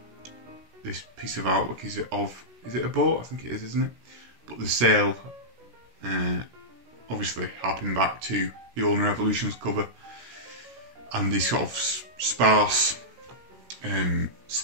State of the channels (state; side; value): late; left; 16 ms